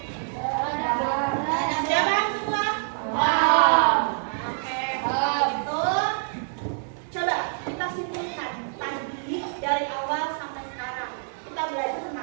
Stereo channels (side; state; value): left; silent; 61 dB below the other